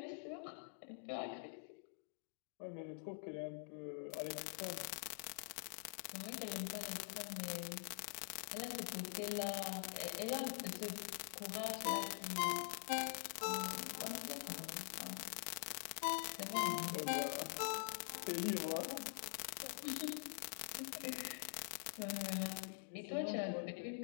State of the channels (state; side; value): silent; right; digital silence